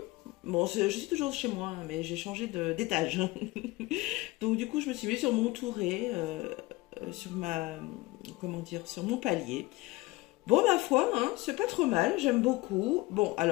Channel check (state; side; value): quieter; right; 20.7 dB